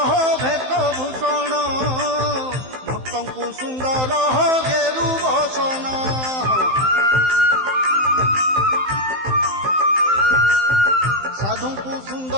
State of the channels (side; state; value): left; late; 15 ms